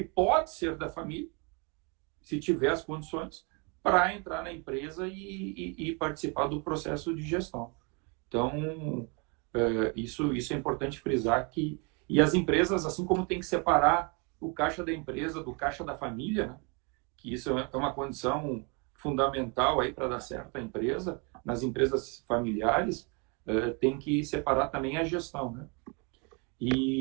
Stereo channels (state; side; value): quieter; left; 33.1 dB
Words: ser da família, se tiver as condições, para entrar na empresa e participar do processo de gestão. Então, isso é importante frisar que... E as empresas, assim como tem que separar o caixa da empresa do caixa da família, né? que isso é uma condição fundamental aí para dar certo a empresa. Nas empresas familiares, tem que separar também a gestão, né?